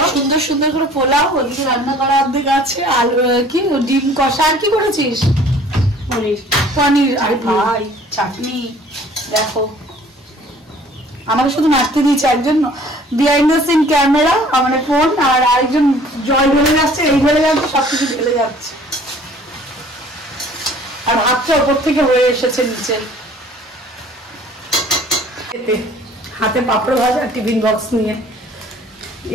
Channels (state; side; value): normal; both; correlation 0.53